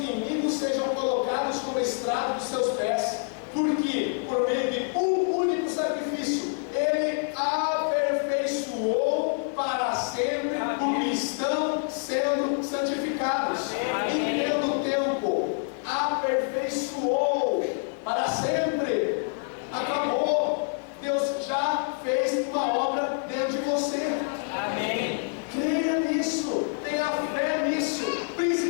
sejam colocados como estrado dos seus pés, porque por meio de um único sacrifício ele aperfeiçoou para sempre o que estão sendo santificados. E pelo tempo aperfeiçoou para sempre. Acabou. Deus já fez uma obra dentro de você. Amém. Creia nisso, tenha fé nisso,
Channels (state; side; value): silent; right; 57 dB below the other